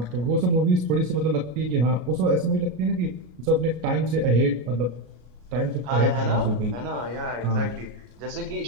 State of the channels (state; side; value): late; left; 33 ms